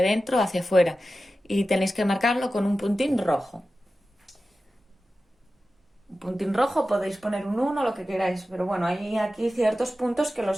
adentro o hacia afuera. Y tenéis que marcarlo con un puntín rojo. Un puntín rojo, podéis poner un 1, lo que queráis, pero bueno, hay aquí ciertos puntos que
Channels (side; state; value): both; normal; correlation 0.94